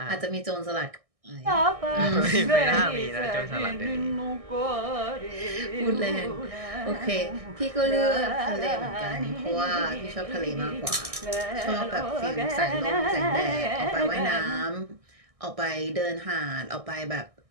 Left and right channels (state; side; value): late; left; 1.6 ms